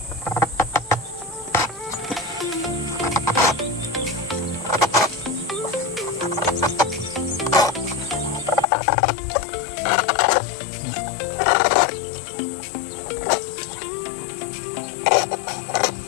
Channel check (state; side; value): drops out; right; at 8.7 s